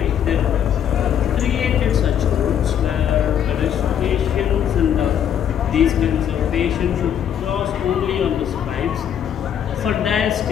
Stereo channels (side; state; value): right; quieter; 9.2 dB